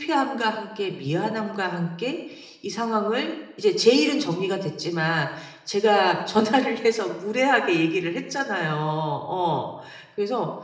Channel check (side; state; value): both; identical; correlation 1.00